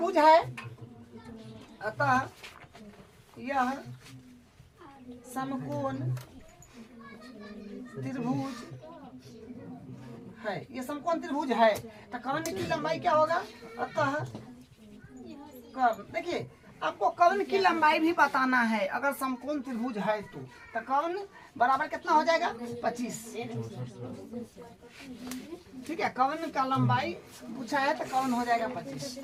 है, अतः यह समकोण त्रिभुज है, ये समकोण त्रिभुज है। तो कर्ण की लंबाई क्या होगा, अतः कर्ण, देखिए आपको कर्ण की लंबाई भी बताना है। अगर समकोण त्रिभुज है तो कर्ण बराबर कितना हो जाएगा, 25, ठीक है। कर्ण का लंबाई पूछा है तो कर्ण हो जाएगा 25,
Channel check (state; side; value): identical; both; correlation 1.00